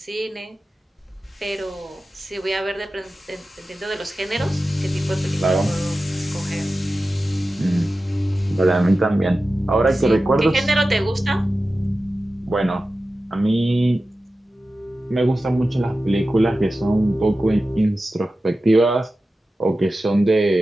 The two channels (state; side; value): normal; both; correlation 0.94